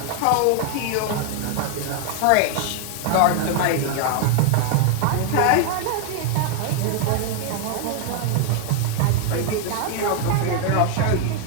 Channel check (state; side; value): different; both; correlation 0.00